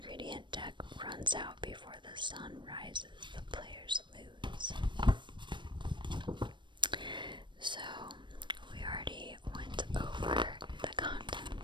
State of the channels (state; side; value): late; left; 0.22 ms